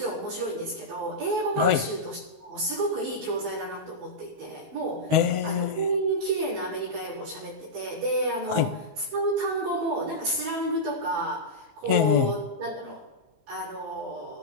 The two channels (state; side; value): late; left; 19 ms